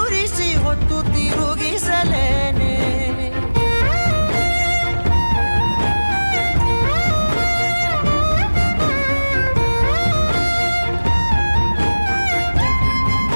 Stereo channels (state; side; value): inverted; both; correlation -1.00